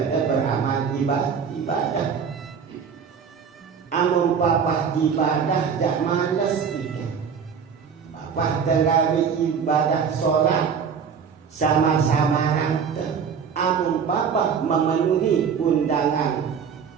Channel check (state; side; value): quieter; left; 6.6 dB